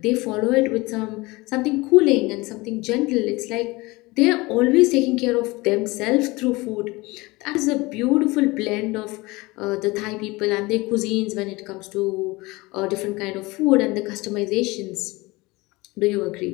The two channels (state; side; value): quieter; right; 22.6 dB